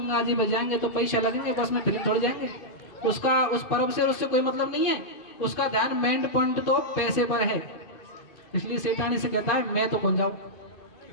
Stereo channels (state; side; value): late; right; 2.6 ms